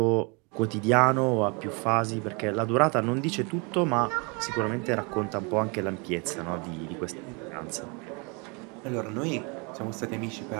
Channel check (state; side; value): quieter; left; 31.6 dB